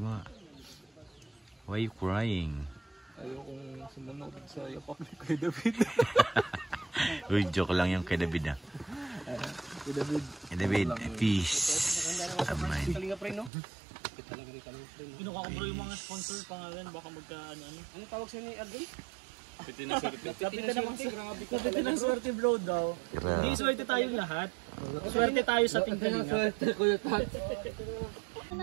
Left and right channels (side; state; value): left; drops out; at 13.5 s